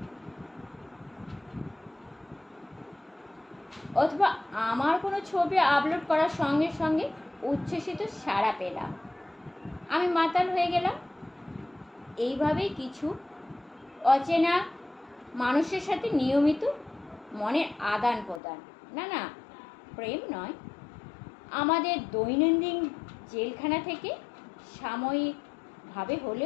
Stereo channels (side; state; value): right; drops out; at 18.4 s